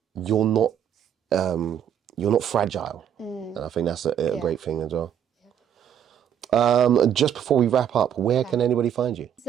you're not fragile. And I think that's a great thing as well. Just before we wrap up, where can anybody find you?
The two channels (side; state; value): left; quieter; 9.3 dB